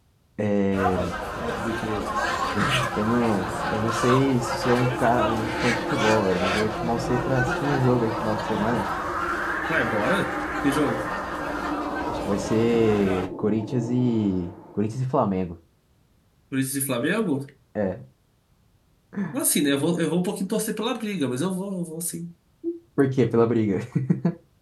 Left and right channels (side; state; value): both; identical; correlation 1.00